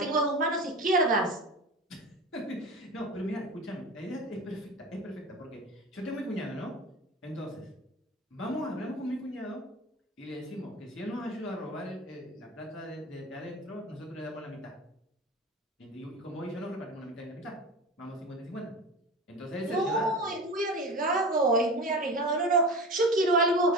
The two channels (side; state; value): both; normal; correlation 0.31